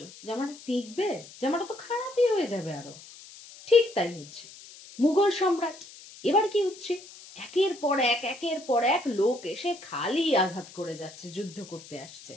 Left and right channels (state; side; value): noise; left; hiss, 18 dB below the sound